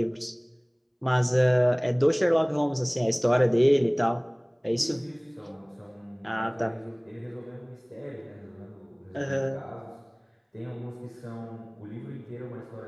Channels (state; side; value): identical; both; correlation 1.00